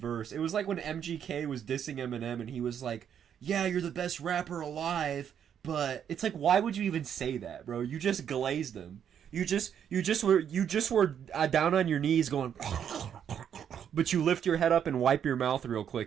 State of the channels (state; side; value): quieter; left; 8.7 dB